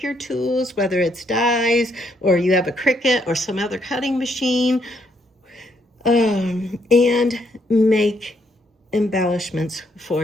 your tools, whether it's dies or you have a Cricut or some other cutting machine, and make embellishments for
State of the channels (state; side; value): normal; both; correlation 0.73